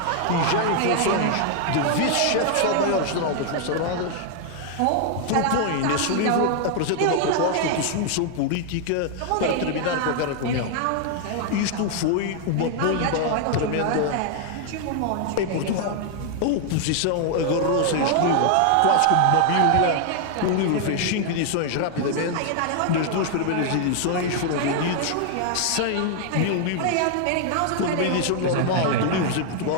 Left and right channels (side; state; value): both; different; correlation 0.00